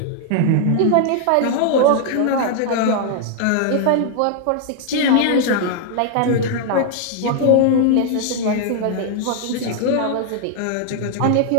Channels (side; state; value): both; different; correlation 0.00